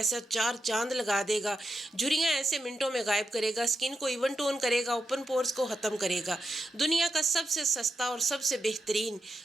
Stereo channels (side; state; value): both; normal; correlation 0.85